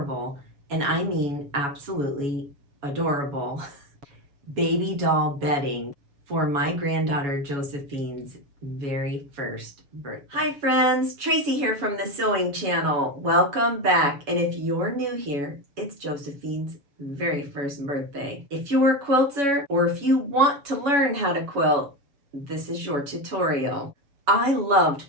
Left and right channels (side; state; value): left; late; 7.1 ms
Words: and I mean absolutely adorable, baby doll bedding for my granddaughter Josephine's very first birthday. Hi friends, Tracy here from the Sewing Channel. Welcome back, and if you're new here, it's Josephine's very first birthday. If you're a quilter or if you want to learn how to quilt, this is your tutorial. I loved